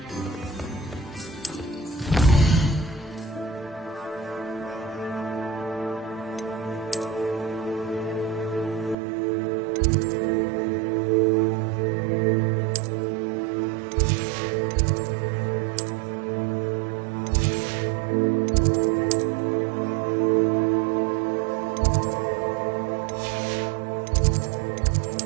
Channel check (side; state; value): left; drops out; at 9.0 s